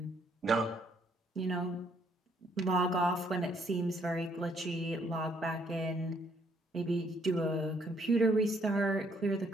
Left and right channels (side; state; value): both; normal; correlation 0.68